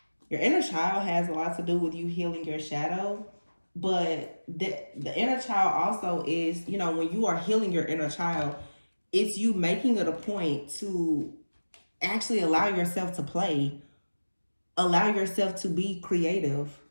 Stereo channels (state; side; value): inverted; both; correlation -1.00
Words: Your inner child has a lot to do with you healing your shadow. But the inner child also is, when you are healing your inner child, it's you making it a point to actually allow yourself to play, allow yourself to be creative.